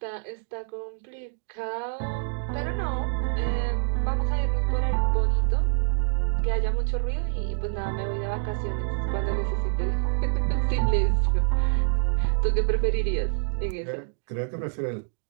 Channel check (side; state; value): left; silent; digital silence